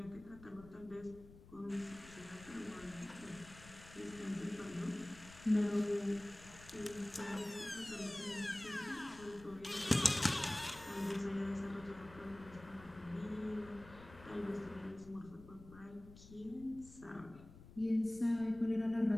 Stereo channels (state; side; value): noise; left; rumble, 18 dB below the sound